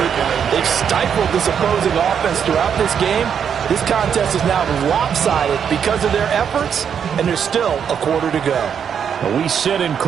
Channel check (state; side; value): quieter; left; 7.7 dB